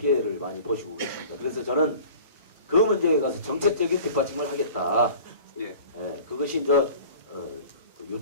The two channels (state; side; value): inverted; both; correlation -0.43